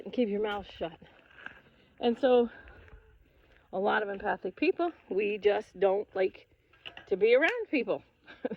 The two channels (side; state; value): both; identical; correlation 1.00